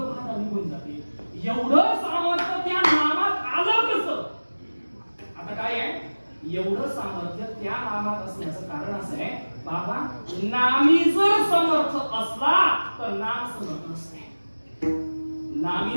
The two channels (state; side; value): inverted; both; correlation -1.00